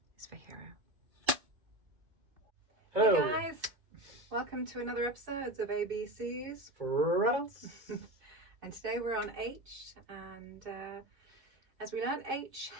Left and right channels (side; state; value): left; late; 2.6 ms